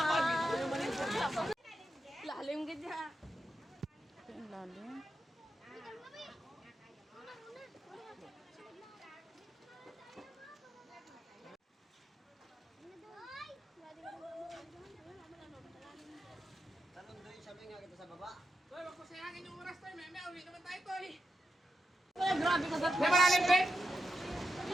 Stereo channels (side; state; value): both; normal; correlation 0.87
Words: Lalim ka dyan. Lalim.